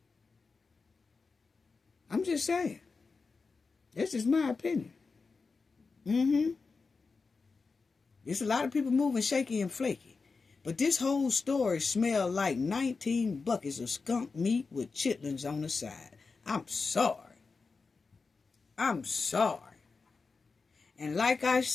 just saying. That's just my opinion. There's a lot of people moving shaky and flaky. But this whole story smelled like 19 buckets of skunk meat with chitlins on the side. I'm sorry. I'm sorry. And like I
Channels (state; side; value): quieter; right; 4.5 dB